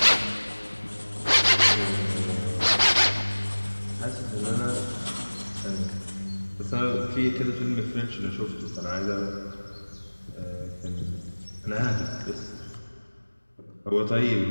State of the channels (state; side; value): inverted; both; correlation -1.00